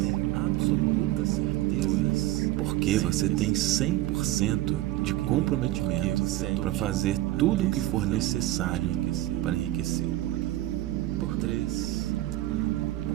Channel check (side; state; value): left; quieter; 15.6 dB